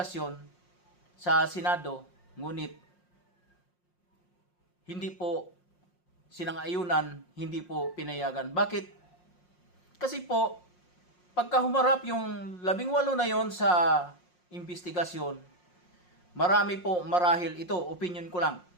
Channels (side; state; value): right; late; 5.6 ms